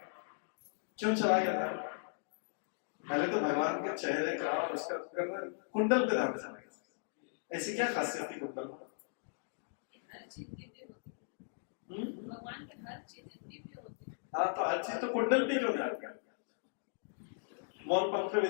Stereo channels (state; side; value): silent; right; digital silence